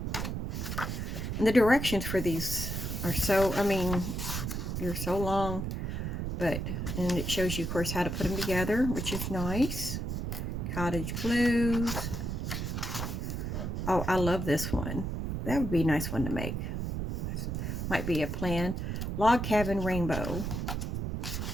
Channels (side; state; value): right; noise; rumble, 3 dB below the sound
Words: And the directions for these are so, they're so long. And it shows you, of course, how to put them together, which is nice. Cottage blues. Oh, I love this one. That would be a nice one to make. Might be a plan. Log cabin rainbow.